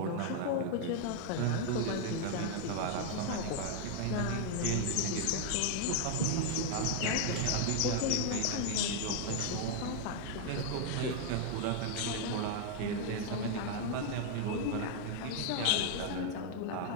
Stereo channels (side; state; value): both; different; correlation 0.00